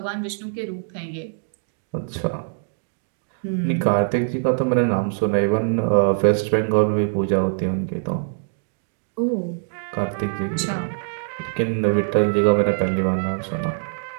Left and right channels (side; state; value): left; silent; digital silence